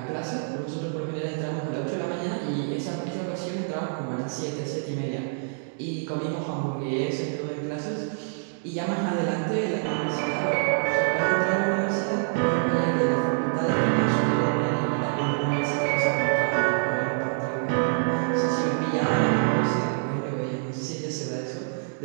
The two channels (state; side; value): silent; left; digital silence